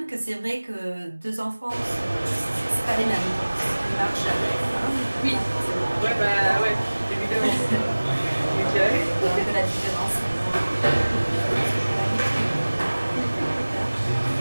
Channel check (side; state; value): both; inverted; correlation -1.00